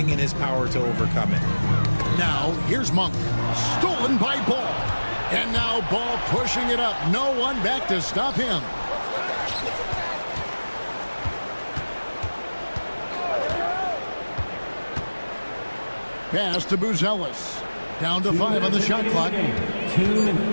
in his power to overcome it. Now, here's Monk. Stolen by Ball. And now Ball pushing it up. No one back to stop him. Pass to Buzelis. Down to 5 on the shot clock. 2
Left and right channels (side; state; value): both; inverted; correlation -1.00